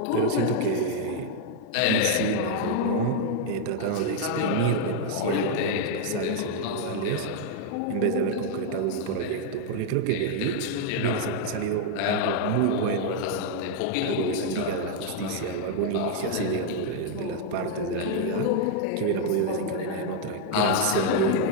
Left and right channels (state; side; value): different; both; correlation 0.00